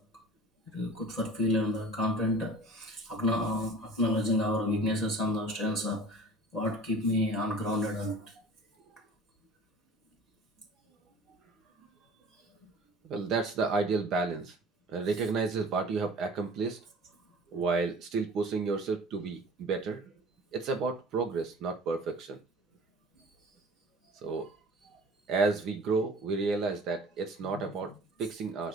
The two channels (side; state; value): both; normal; correlation 0.44